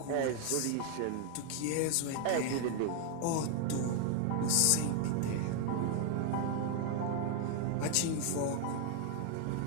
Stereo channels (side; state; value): both; different; correlation 0.00